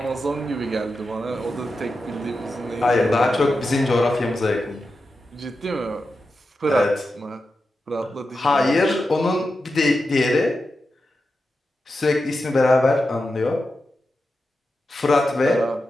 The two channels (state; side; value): normal; both; correlation 0.90